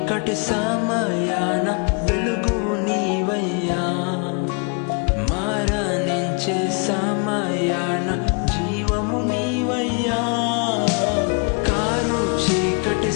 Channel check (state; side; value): quieter; right; 34.7 dB